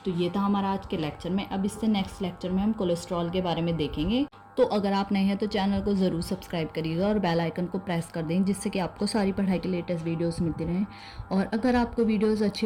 तो ये था हमारा आज के लेक्चर में। अब इससे नेक्स्ट लेक्चर में हम कोलेस्ट्रॉल के बारे में देखेंगे। तो अगर आप नए हैं तो चैनल को ज़रूर सब्सक्राइब करिएगा और बेल आइकन को प्रेस कर दें, जिससे कि आपको सारी पढ़ाई के लेटेस्ट वीडियोस मिलती रहें। और अगर आपको वीडियोस अच्छी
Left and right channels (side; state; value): both; identical; correlation 1.00